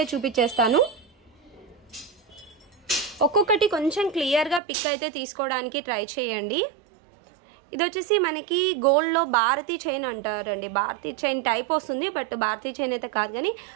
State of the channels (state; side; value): drops out; left; at 4.6 s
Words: చూపించేస్తాను। ఒక్కొక్కటి కొంచెం క్లియర్ గా పిక్ అయితే తీసుకోవడానికి ట్రై చేయండి। ఇది వచ్చేసి మనకి గోల్డ్ లో భారతీ చైన్ అంటారండి, భారతీ చైన్ టైప్ వస్తుంది, బట్ భారతీ చైన్ అయితే కాదు కానీ